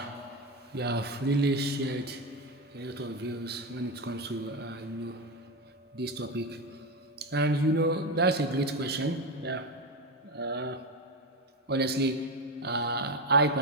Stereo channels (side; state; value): both; normal; correlation 0.15